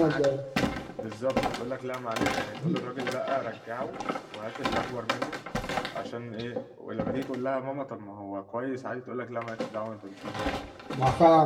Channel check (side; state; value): both; identical; correlation 1.00